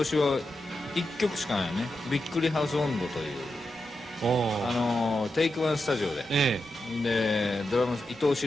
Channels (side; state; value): both; normal; correlation 0.88